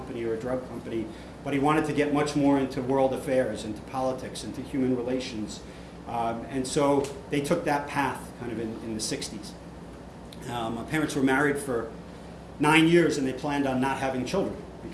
or a drug company. But he wanted to get much more into world affairs, into politics, into human relations. And so they took that path kind of in the 60s. My parents were married for 9 years, and they planned on not having children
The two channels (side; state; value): both; identical; correlation 1.00